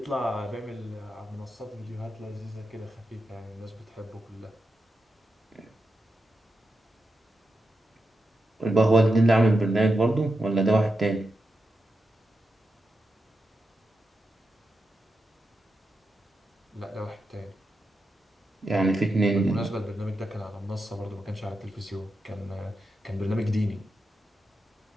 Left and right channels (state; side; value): normal; both; correlation 0.88